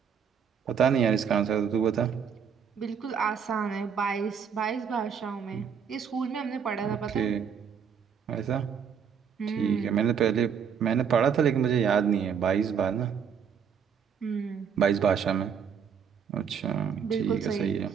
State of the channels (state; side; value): quieter; left; 7.3 dB